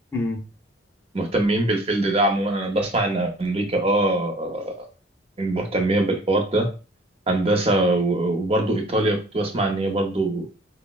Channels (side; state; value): both; normal; correlation 0.50